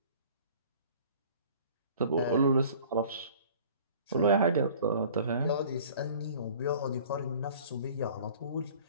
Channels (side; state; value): both; inverted; correlation -0.48